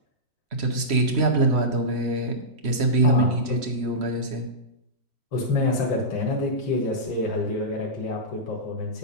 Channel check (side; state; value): left; late; 3.1 ms